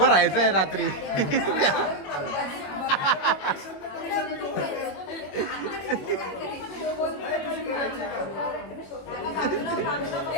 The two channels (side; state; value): right; late; 21 ms